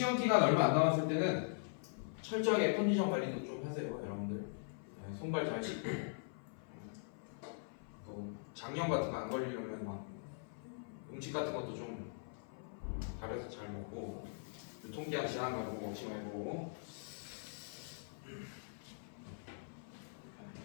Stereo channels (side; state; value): right; silent; 50 dB below the other